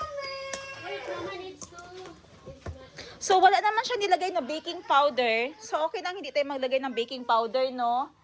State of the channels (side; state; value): both; identical; correlation 1.00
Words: Wait, Mama needs to. So, wala naman siya nilagay na baking powder. So, okay lang hindi tayo maglagay ng baking powder, no?